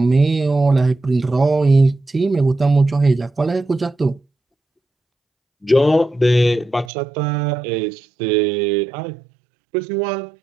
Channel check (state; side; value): drops out; left; at 6.9 s